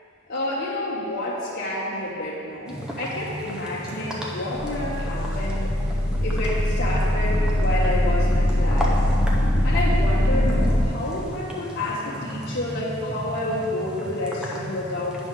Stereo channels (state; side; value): normal; both; correlation 0.69